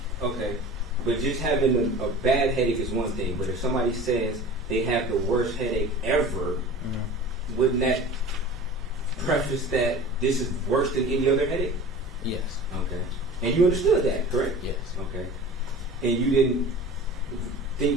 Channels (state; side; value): normal; both; correlation 0.39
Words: Okay. But just having a bad headache is one thing. But if somebody says they have the worst headache ever, wouldn't that preface that this is worse than any other headache? Yes. Okay. And you understood that, correct? Yes. Okay. And you didn't